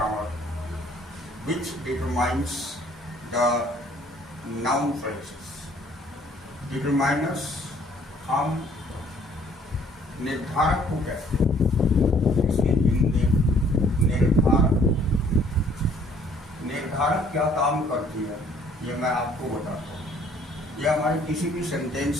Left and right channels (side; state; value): both; normal; correlation 0.60